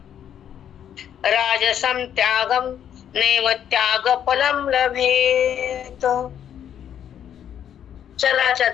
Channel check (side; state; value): right; quieter; 9.5 dB